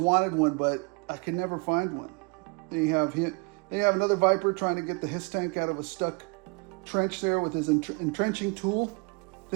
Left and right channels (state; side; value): quieter; left; 31.4 dB